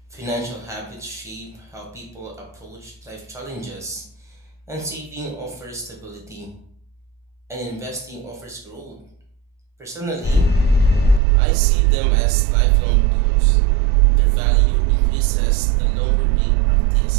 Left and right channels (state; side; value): drops out; left; at 11.2 s